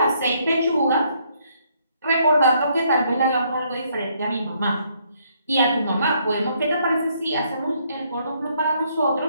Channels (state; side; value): inverted; both; correlation -0.69